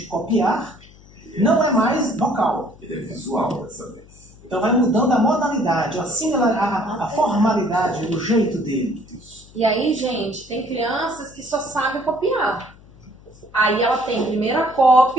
copiar não é mais vocal. Ele é visual dessa vez. Então vai mudando a modalidade, a formalidade, o jeito dele. E aí, gente, tem crianças que só sabem copiar. Aí ela tem primeiro a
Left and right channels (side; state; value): left; noise; hum, 24 dB below the sound